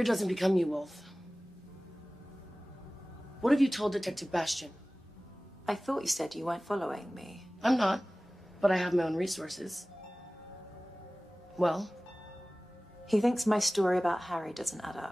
doesn't become you, Wolf. What have you told Detective Bastian? I thought you said you weren't following me. I'm not, but I have my own resources. Well? He thinks my story about Harry doesn't add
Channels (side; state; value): both; normal; correlation 0.98